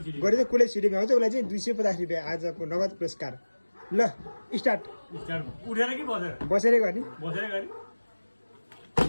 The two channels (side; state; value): both; inverted; correlation -1.00